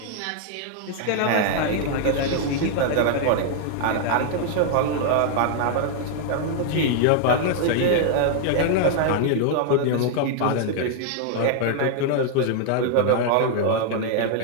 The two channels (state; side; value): different; both; correlation 0.00